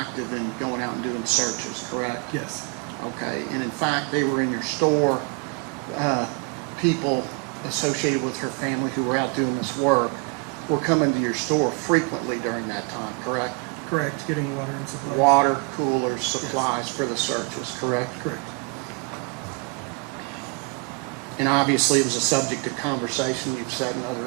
in going out and doing searches, correct? Yes. Okay. And in fact, they were in your store. People associated with her family who were out doing this work were coming to your store frequently during that time, correct? Correct, getting water and supplies. Water, coolers, supplies for the searches, correct? Correct. And obviously, it was a subject of conversation, you've said in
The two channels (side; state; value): left; quieter; 31.9 dB